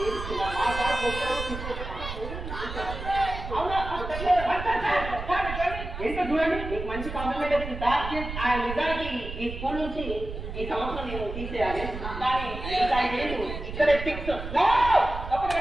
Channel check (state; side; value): noise; right; rumble, 8 dB below the sound